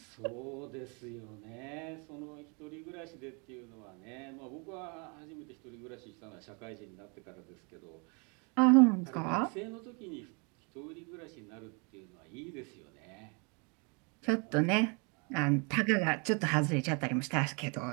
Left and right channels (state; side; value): quieter; left; 33.3 dB